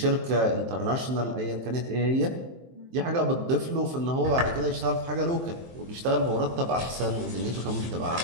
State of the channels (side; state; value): left; late; 23 ms